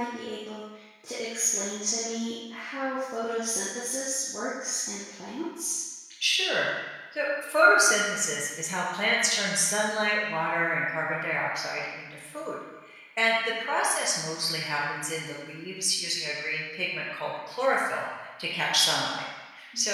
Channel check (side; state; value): both; identical; correlation 1.00